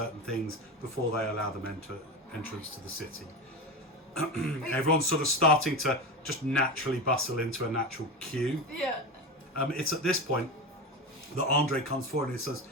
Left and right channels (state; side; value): normal; both; correlation 0.22